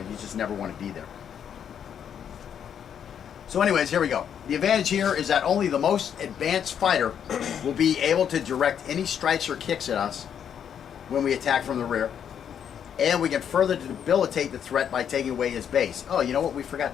just never want to be there. So anyways, here we go. The advantage here is that only the most advanced fighter will be able to direct any strikes or kicks at us when we attack from the rear. And we can further debilitate the threat by taking away his base. Oh, you know what? We forgot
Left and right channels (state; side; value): quieter; right; 8.5 dB